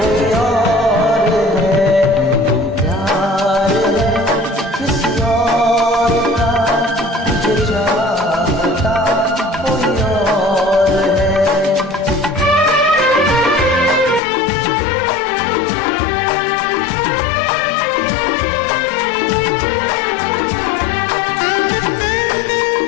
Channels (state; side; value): drops out; right; at 14.2 s